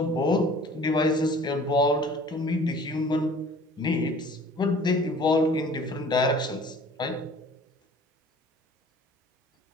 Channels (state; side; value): normal; both; correlation 0.49